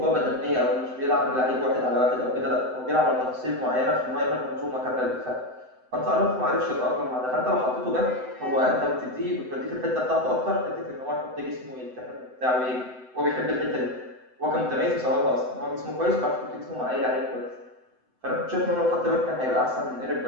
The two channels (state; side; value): late; left; 7.9 ms